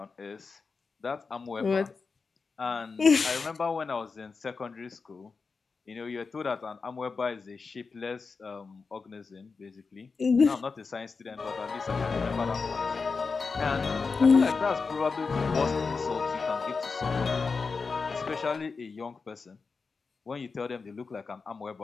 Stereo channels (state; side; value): quieter; right; 4.7 dB